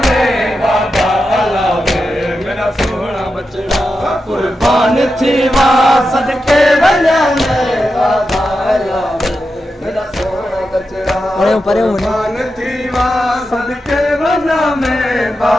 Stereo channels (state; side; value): normal; both; correlation 0.89